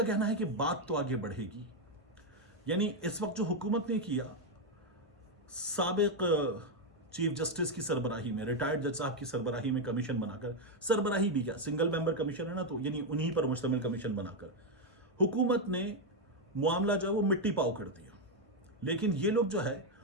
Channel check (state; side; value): normal; both; correlation 0.04